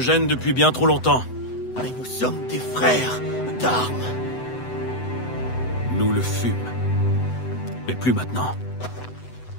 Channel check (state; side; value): late; right; 8.0 ms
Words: depuis bien trop longtemps. Mais nous sommes des frères d'armes. Nous le fûmes. Mais plus maintenant.